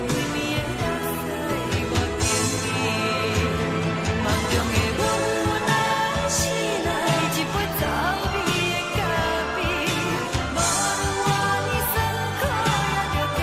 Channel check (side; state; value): both; identical; correlation 1.00